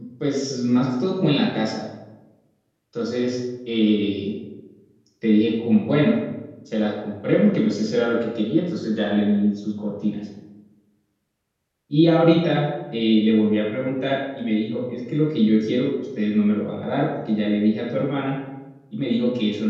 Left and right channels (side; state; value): both; identical; correlation 1.00